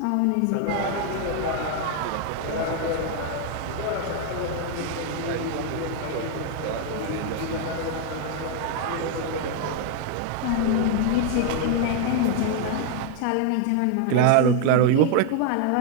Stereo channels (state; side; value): different; both; correlation 0.00